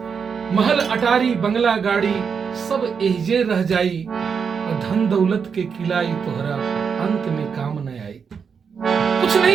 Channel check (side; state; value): left; quieter; 6.3 dB